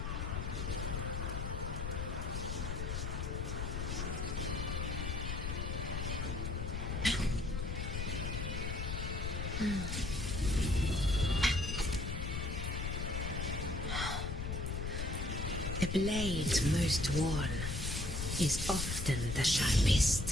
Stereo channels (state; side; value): noise; left; rumble, 2 dB below the sound